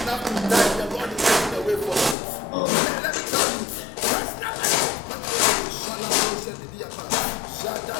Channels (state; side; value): drops out; right; at 2.1 s